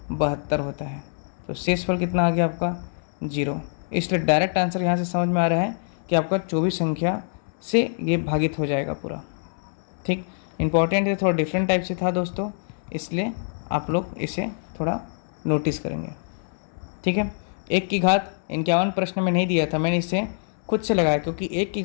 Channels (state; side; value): silent; right; 62 dB below the other